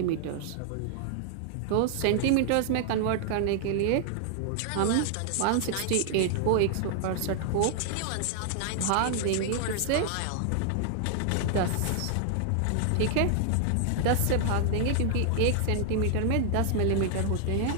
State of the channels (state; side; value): different; both; correlation 0.00